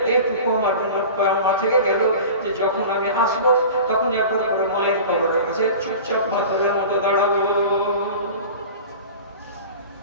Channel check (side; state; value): both; inverted; correlation -0.37